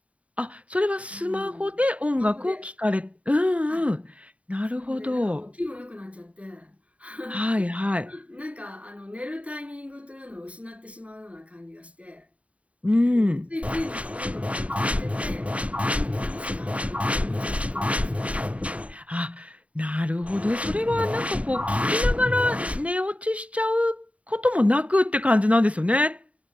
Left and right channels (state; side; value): late; left; 0.066 ms